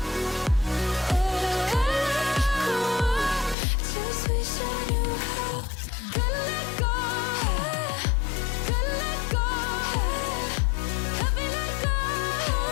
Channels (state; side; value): drops out; right; at 3.6 s